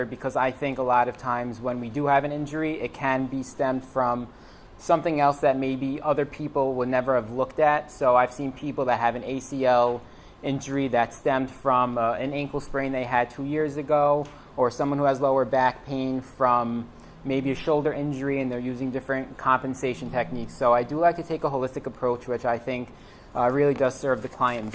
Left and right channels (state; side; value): identical; both; correlation 1.00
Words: because I think a lot of times when we do have an injury, it can be stemmed from something else that maybe other people would never have looked at. So I've seen people that have an ACL injury that stemmed from an ankle sprain they had 2 years ago, or someone who has lower back pain from maybe a shoulder injury, and they're using different compensation techniques. So I do like to take a holistic approach, which I think really does serve the client